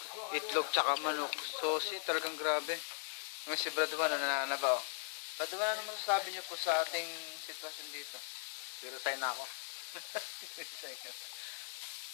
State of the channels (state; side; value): silent; right; digital silence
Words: itlog tsaka manok. Sosi, talagang grabe. Ngayon si Brad Juan, nananaba oh. Brad Juan, ano masasabi niyo po sa ating sitwasyon dito? resign na ako.